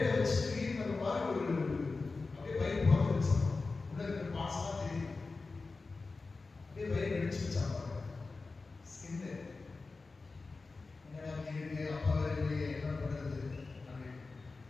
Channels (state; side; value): quieter; right; 3.9 dB